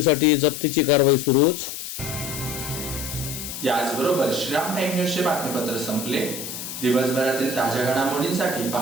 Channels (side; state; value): left; noise; hiss, 8 dB below the sound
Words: जप्तीची कारवाई सुरूच. याचबरोबर श्रीराम टाइम न्यूजचे बातमीपत्र संपले. दिवसभरातील ताज्या घडामोडींसाठी